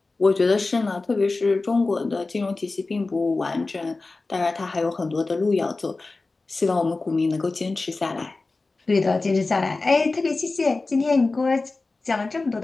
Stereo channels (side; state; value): right; quieter; 3.5 dB